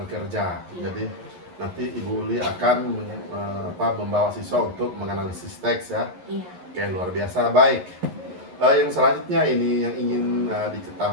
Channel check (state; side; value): late; left; 11 ms